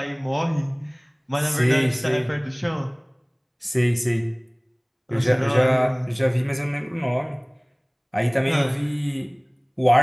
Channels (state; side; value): identical; both; correlation 1.00